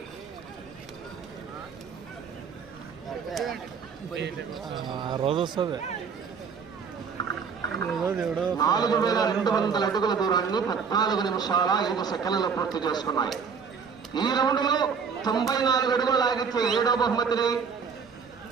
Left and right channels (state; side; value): quieter; left; 6.0 dB